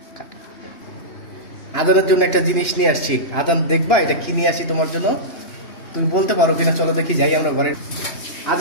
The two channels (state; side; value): late; right; 2.9 ms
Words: আজানের জন্য একটা জিনিস নিয়ে আসছি। আজান, দেখবা এটা কি নিয়ে আসছি তোমার জন্য? তুমি বলতে পারো কিনা? চলো দেখি, যাই আমরা ঘরে।